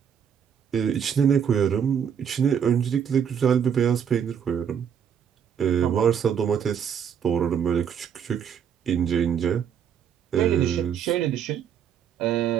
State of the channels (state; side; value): quieter; left; 8.0 dB